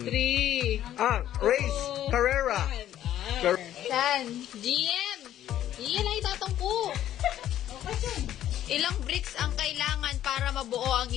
3. Race. Carrera. San? GM. Iyan ay tatangko. Ilang bricks ang kailangan para mabuo ang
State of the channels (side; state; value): right; quieter; 11.9 dB